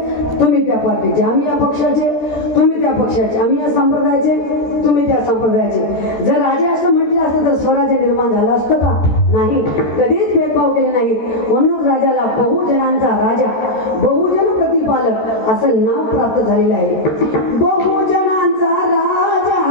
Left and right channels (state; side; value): late; right; 13 ms